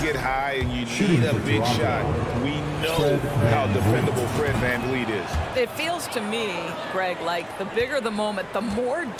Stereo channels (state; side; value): identical; both; correlation 1.00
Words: high and you need a big shot, we know how defendable Fred Van Vliet is. It feels to me, Greg, like the bigger the moment, the more